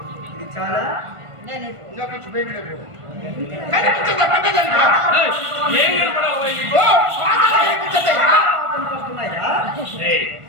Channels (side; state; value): left; late; 1.5 ms